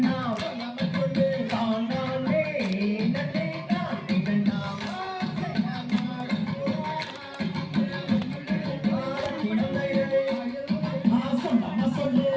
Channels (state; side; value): identical; both; correlation 1.00